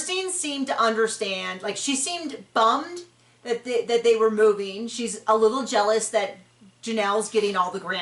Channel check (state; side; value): identical; both; correlation 1.00